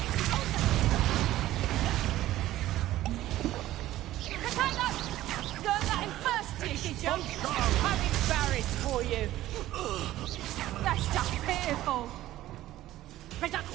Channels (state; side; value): quieter; left; 14.8 dB